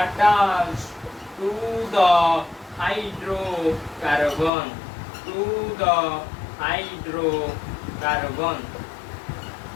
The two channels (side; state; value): right; drops out; at 4.5 s